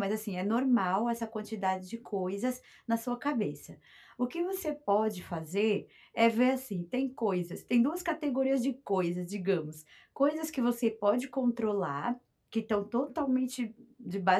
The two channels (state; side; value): identical; both; correlation 1.00